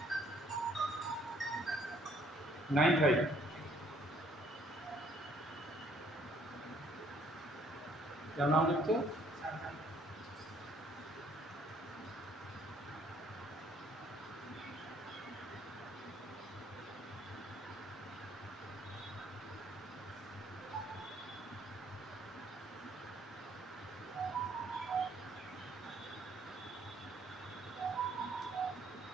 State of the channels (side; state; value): both; normal; correlation 0.63